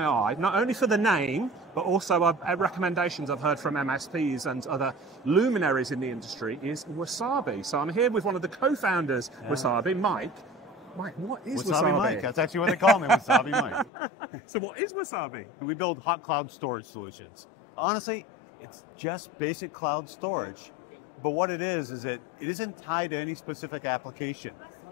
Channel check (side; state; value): right; drops out; at 13.9 s